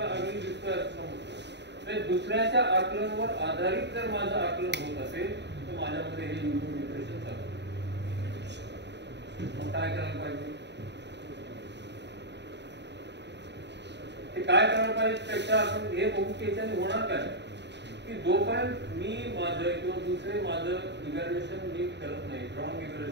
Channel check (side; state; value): left; late; 0.50 ms